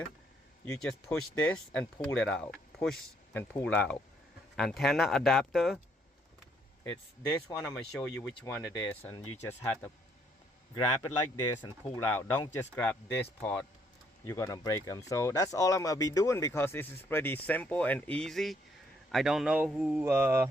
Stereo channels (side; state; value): both; normal; correlation 0.69